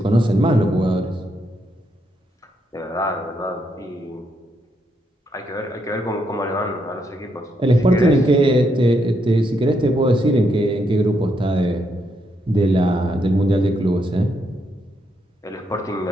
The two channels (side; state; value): both; normal; correlation 0.78